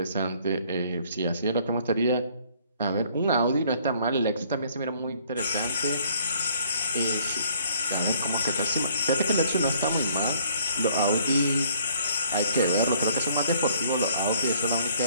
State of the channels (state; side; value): inverted; both; correlation -0.60